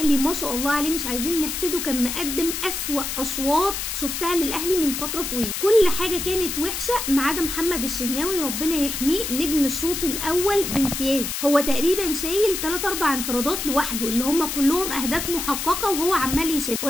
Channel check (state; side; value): noise; left; hiss, 4 dB below the sound